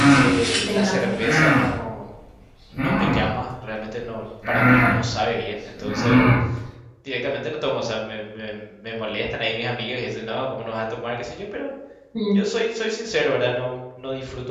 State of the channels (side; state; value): both; identical; correlation 1.00